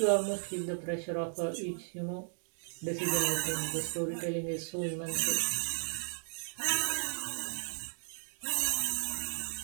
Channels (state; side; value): silent; left; digital silence